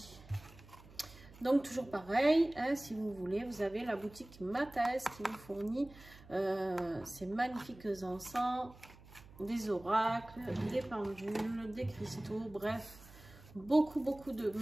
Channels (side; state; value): right; noise; hum, 21 dB below the sound